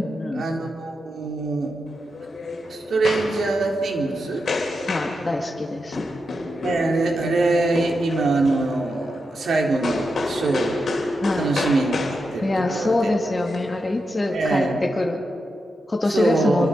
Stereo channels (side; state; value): both; normal; correlation 0.87